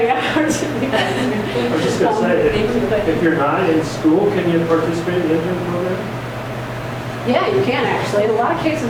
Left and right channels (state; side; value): identical; both; correlation 1.00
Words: hours. I was just going to say, if you're not in school, can you participate in the intern program? Yeah, you can actually. In a lot of